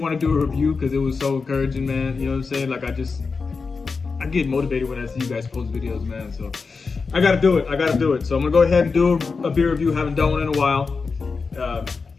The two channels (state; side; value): quieter; right; 4.7 dB